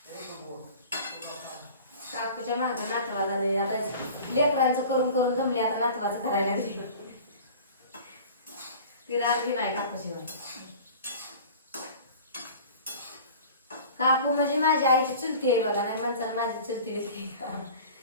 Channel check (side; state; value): both; inverted; correlation -0.41